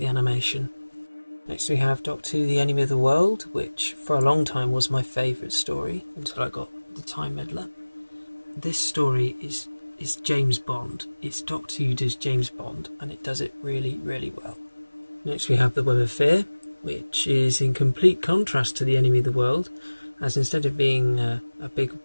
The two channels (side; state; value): both; inverted; correlation -1.00